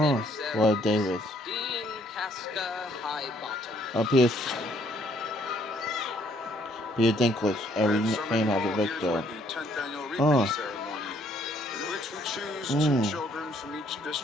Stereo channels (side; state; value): both; normal; correlation 0.66